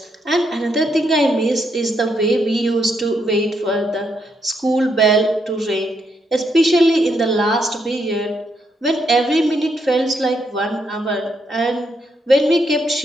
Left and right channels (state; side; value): normal; both; correlation 0.78